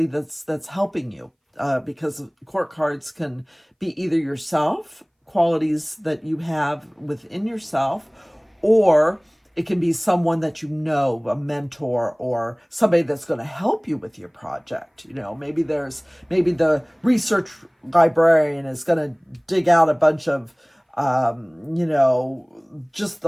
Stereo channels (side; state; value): both; identical; correlation 1.00